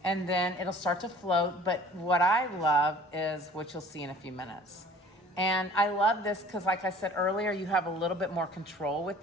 And then it'll start to float. But what I love is what you'll see in a few minutes. And I love this because, like I said earlier, you have a little bit more control with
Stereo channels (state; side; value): normal; both; correlation 0.49